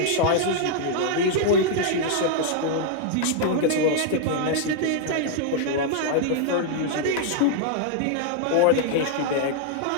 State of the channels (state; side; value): different; both; correlation 0.00